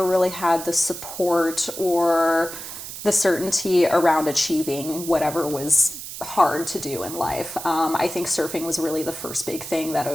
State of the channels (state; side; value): noise; right; hiss, 10 dB below the sound